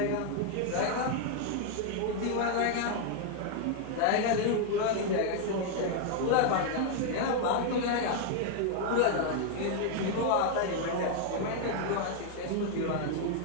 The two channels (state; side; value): different; both; correlation 0.00